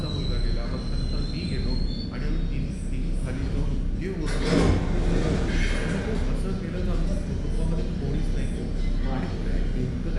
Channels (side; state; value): both; identical; correlation 1.00